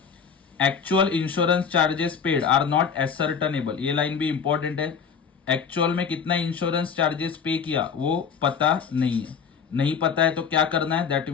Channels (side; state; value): right; quieter; 6.4 dB